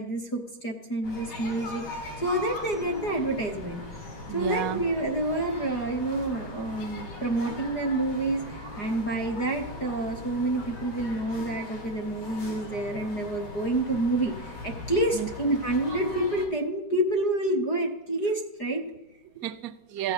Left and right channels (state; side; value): late; right; 4.9 ms